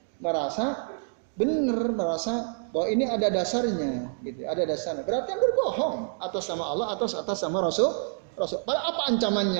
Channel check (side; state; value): left; silent; digital silence